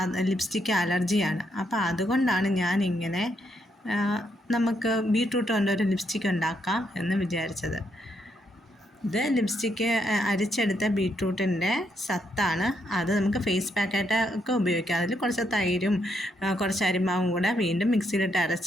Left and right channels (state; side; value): normal; both; correlation 0.77